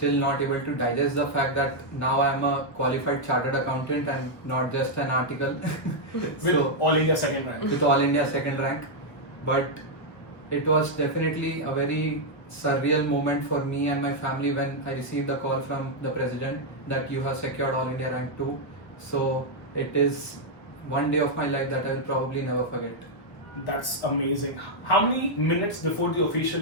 not able to digest the fact that now I'm a qualified chartered accountant and not just an article. With All India second rank. With All India second rank. But it was definitely a very surreal moment for me and my family when I received the call from the president that you have secured All India rank 2. So it is one day of my life that I will probably never forget. That's amazing. How many minutes before the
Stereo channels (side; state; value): right; late; 1.4 ms